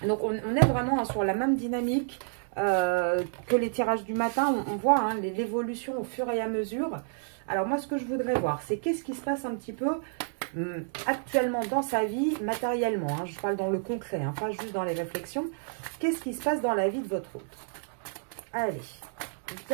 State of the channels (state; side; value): silent; left; digital silence